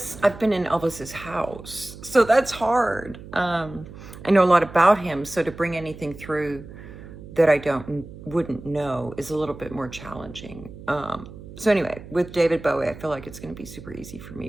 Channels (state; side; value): noise; right; hum, 15 dB below the sound